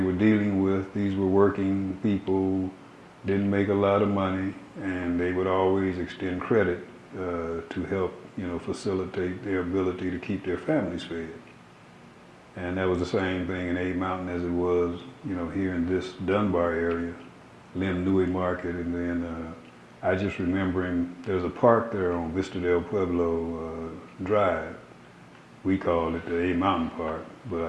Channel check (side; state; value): both; identical; correlation 1.00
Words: were dealing with. These were working people, didn't make a lot of money, and they would always extend credit to help, facilitate their ability to keep their families fed. And that was the same thing in A Mountain as it was, here in this Dunbar area, Lim Nui Market, and then I just remembering there's a park there on Vista del Pueblo Drive. We called it the A Mountain Park, but